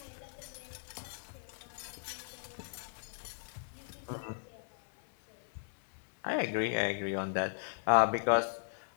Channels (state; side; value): silent; right; 53 dB below the other